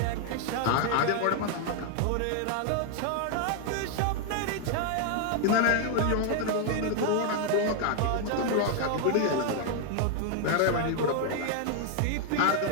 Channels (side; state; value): both; different; correlation 0.00